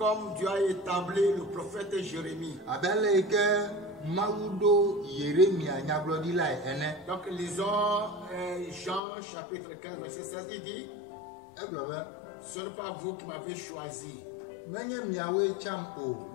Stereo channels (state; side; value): drops out; right; at 9.0 s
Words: Dieu a établi le prophète Jérémie. Donc lisons Jean chapitre 15 verset 16. Il dit: ce n'est pas vous qui m'avez choisi,